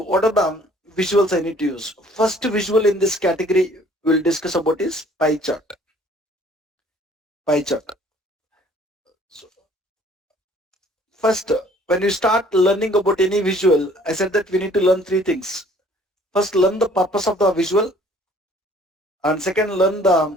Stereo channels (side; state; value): both; normal; correlation 0.56